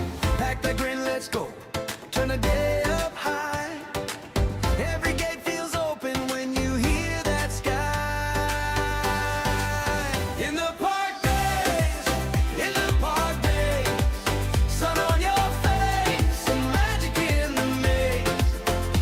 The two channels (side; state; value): both; identical; correlation 1.00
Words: Pack that grin, let's go, turn the day up high. Every gate feels open when you hear that sky. In the park days, in the park days, sun on your face and magic in the maze.